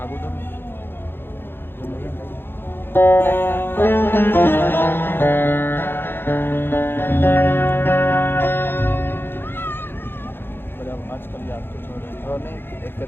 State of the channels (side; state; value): right; late; 0.10 ms